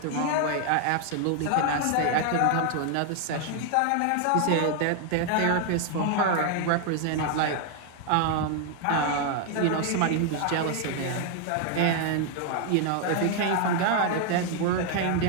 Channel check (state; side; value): different; both; correlation 0.00